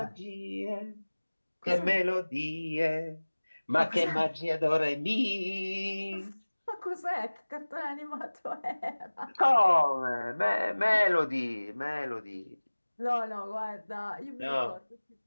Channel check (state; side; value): inverted; both; correlation -1.00